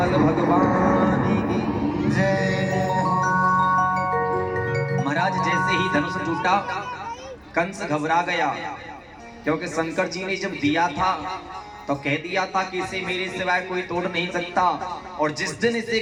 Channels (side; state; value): both; identical; correlation 1.00